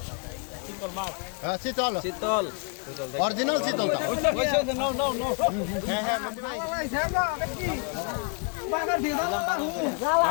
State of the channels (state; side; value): quieter; right; 36.8 dB